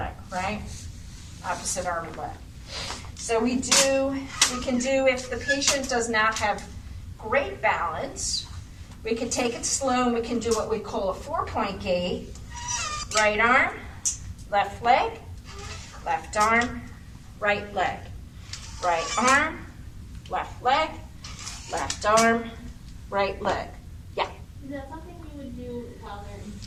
right? Opposite arm and leg. So we can do, if the patient does not have great balance, we can take it slow and we can do what we call a 4-point gait. Right arm, left leg, left arm, right leg. Right arm, left leg, left arm, right leg. Yeah? Is that something you would do while they're in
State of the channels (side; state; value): both; identical; correlation 1.00